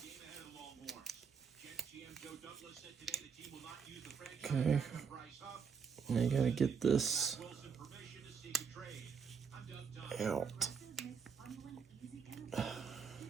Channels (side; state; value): left; quieter; 6.2 dB